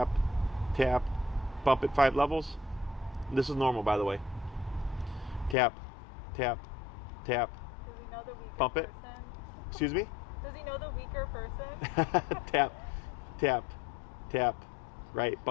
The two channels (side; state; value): right; drops out; at 5.6 s